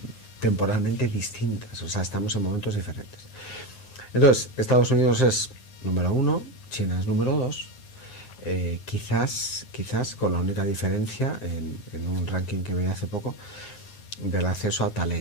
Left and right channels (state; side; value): late; right; 9.6 ms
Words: temporalmente distintas, o sea, estamos en momentos diferentes. Entonces, Estados Unidos es número 1, China es número 2, quizás con la única diferencia en un ranking que veía hace poco del acceso a